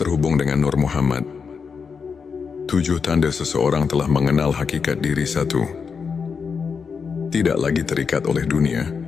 dengan Nur Muhammad. 7 tanda seseorang telah mengenal hakikat diri. 1. Tidak lagi terikat oleh dunia.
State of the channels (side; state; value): right; quieter; 5.8 dB